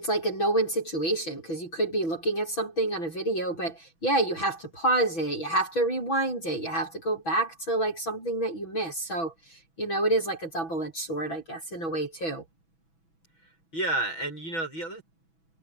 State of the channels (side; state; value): right; late; 6.1 ms